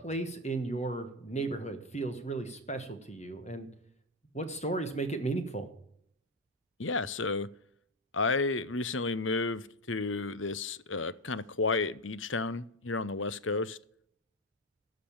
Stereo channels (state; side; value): normal; both; correlation 0.10